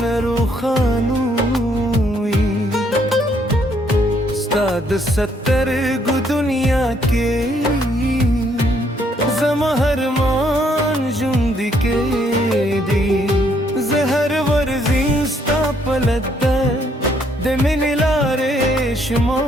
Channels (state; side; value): normal; both; correlation 0.69